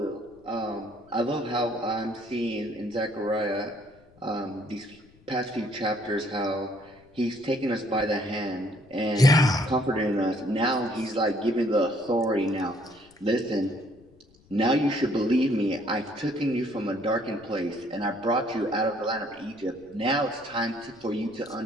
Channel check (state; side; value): noise; left; rumble, 28 dB below the sound